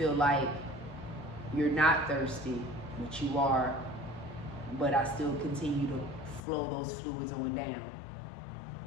like you're not thirsty, but you are. But I still continue to flow those fluids on down.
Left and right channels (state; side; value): drops out; right; at 6.4 s